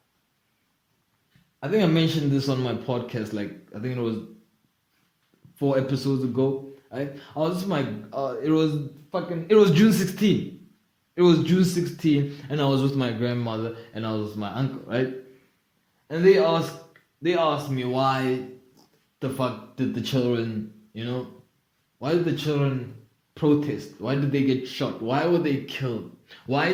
I think I mentioned this on my podcast, like I think it was 4 episodes ago. I was just it was June 16th. It was June 16th, and I was with my grandmother and I was with my uncle, right? And they asked me why the fuck did the children, why did the children protest? Why did they get shot? Why were they killed?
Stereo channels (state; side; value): identical; both; correlation 1.00